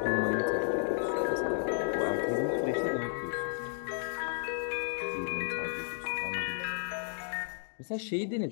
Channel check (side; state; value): right; silent; digital silence